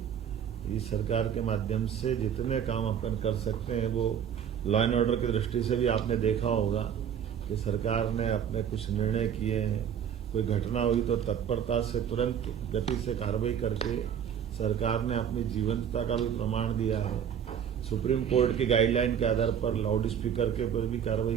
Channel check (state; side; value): quieter; left; 8.6 dB